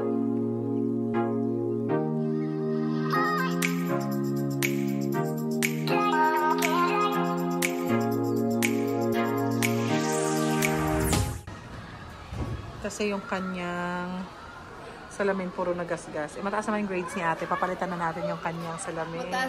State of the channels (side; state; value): both; identical; correlation 1.00